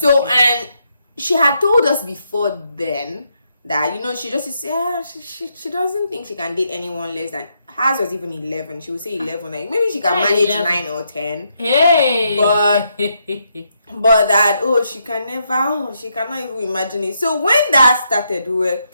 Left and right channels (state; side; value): inverted; both; correlation -0.78